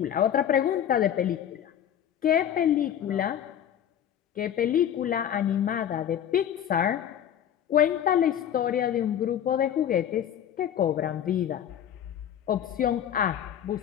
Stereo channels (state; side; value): quieter; right; 9.8 dB